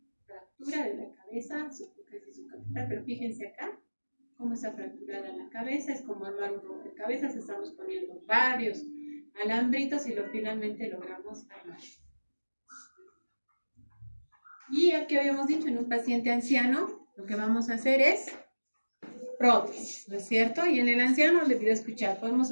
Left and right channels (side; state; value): both; inverted; correlation -1.00